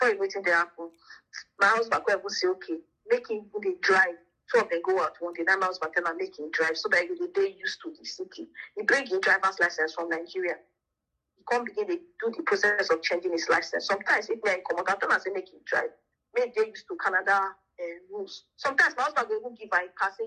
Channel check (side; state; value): both; identical; correlation 1.00